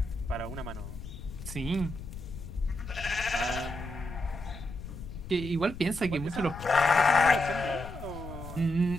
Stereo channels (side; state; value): left; noise; rumble, 11 dB below the sound